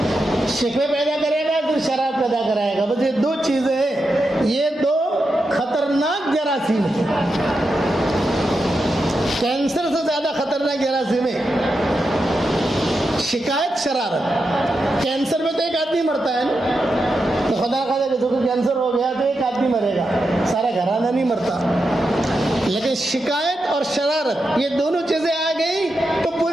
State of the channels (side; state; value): both; normal; correlation 0.87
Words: شکوے پیدا کرے گا، پھر شرارت پیدا کرائے گا۔ بس یہ 2 چیزیں ہیں، یہ 2 خطرناک جراثیم ہیں، کینسر سے زیادہ خطرناک جراثیم ہے شکایت، شرارت۔ کینسر میں تو ایک آدمی مرتا ہے نا، تو خدا خدا کسی کو کینسر ہو گیا تو ایک آدمی مرے گا، سارا گھرانہ نہیں مرتا۔ لیکن شکایت اور شرارت، یہ دونوں چیزیں آ گئی تو